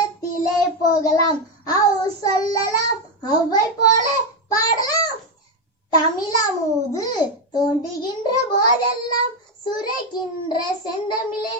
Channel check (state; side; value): normal; both; correlation 0.08